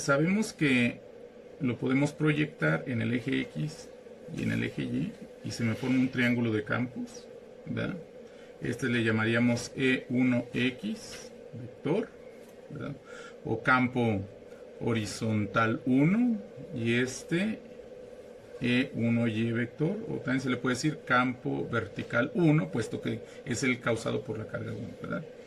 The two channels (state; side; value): identical; both; correlation 1.00